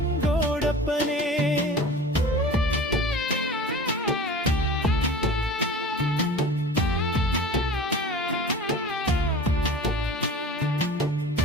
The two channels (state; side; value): normal; both; correlation 0.38